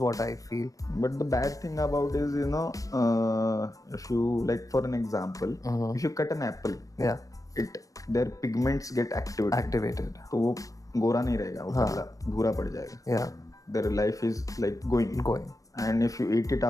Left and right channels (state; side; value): late; right; 0.17 ms